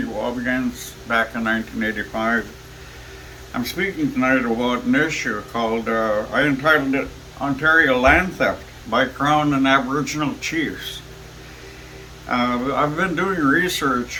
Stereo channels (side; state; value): both; identical; correlation 1.00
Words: Waubegans back in 1985. I'm speaking tonight about an issue called, I entitled it Ontario Land Theft by Crown and Aboriginal Chiefs. I've been doing